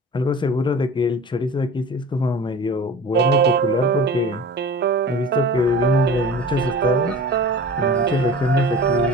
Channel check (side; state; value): both; normal; correlation 0.39